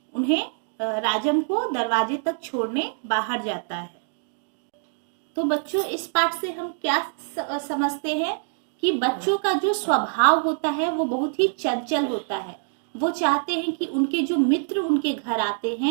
उन्हें राजम को दरवाजे तक छोड़ने बाहर जाता है। तो बच्चों, इस पाठ से हम क्या समझते हैं कि बच्चों का जो स्वभाव होता है वो बहुत ही चंचल होता है। वो चाहते हैं कि उनके जो मित्र उनके घर आते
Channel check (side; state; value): left; silent; digital silence